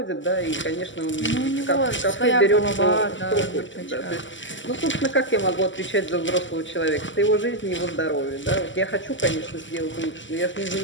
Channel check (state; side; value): late; right; 0.55 ms